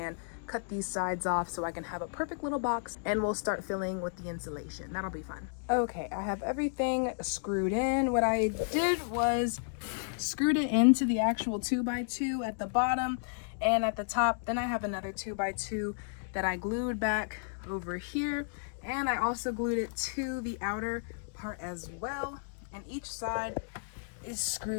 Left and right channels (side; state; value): right; silent; digital silence